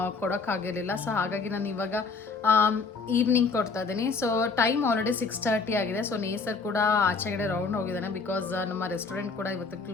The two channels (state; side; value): quieter; right; 4.6 dB